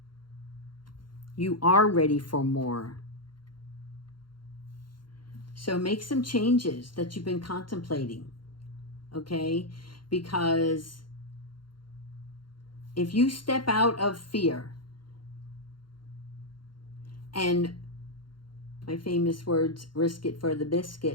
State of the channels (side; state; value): right; late; 0.72 ms